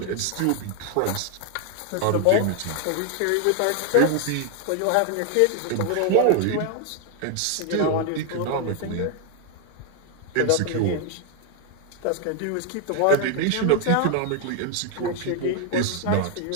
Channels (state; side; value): different; both; correlation 0.00